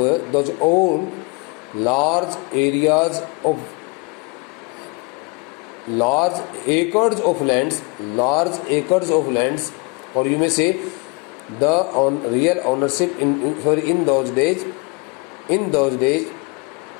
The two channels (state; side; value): quieter; right; 29.6 dB